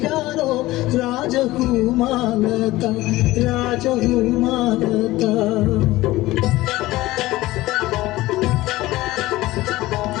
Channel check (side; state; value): right; quieter; 17.9 dB